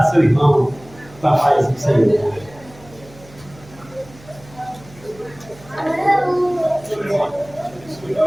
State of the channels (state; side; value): noise; right; hum, 23 dB below the sound